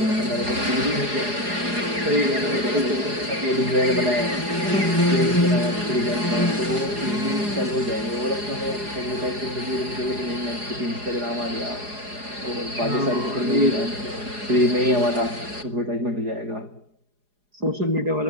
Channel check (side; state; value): left; late; 4.8 ms